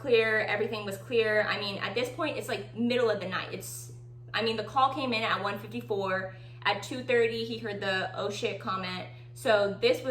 everything was clear. I mean, at this point, it's like middle of the night. The call came in at 1:54. At 2:30, he heard the "oh shit" comment. So this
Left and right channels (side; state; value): both; identical; correlation 1.00